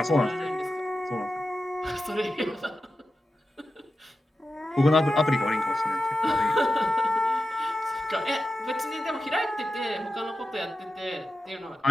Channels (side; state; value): both; normal; correlation 0.92